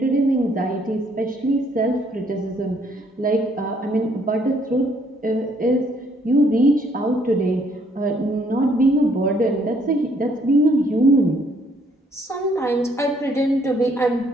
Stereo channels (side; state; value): both; normal; correlation 0.66